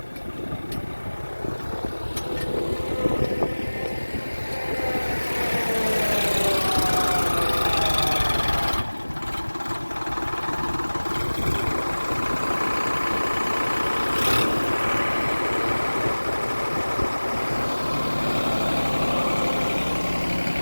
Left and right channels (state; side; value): inverted; both; correlation -1.00